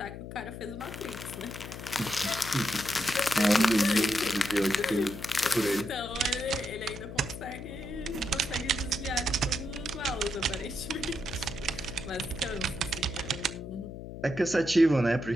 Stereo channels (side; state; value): left; noise; hum, 10 dB below the sound